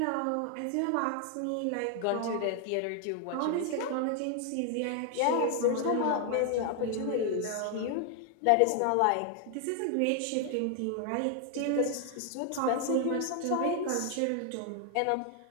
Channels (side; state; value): both; different; correlation 0.00